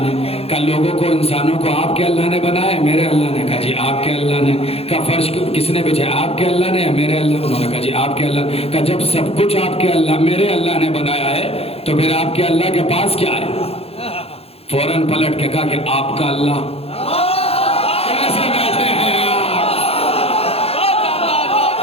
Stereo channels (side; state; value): right; late; 0.29 ms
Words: نے۔ کہا لوگوں کو انسانوں کو آپ کے اللہ نے بنایا ہے میرے اللہ نے؟ کہا جی آپ کے اللہ نے۔ کہا فرش کس نے بچھایا آپ کے اللہ نے یا میرے اللہ؟ انہوں نے کہا جی آپ کے اللہ۔ کہا جب سب کچھ آپ کے اللہ میرے اللہ نے بنایا ہے تو پھر آپ کے اللہ کے پاس کیا ہے؟ فوراً پلٹ کے کہا کہ آپ کا اللہ کیسے بیٹھے ہیں آپ؟